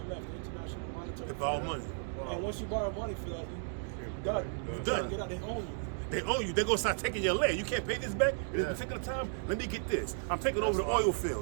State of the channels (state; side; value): silent; left; digital silence